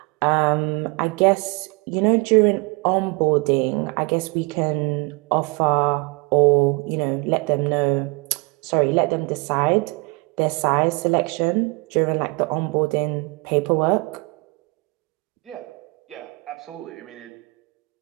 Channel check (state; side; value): quieter; left; 28.6 dB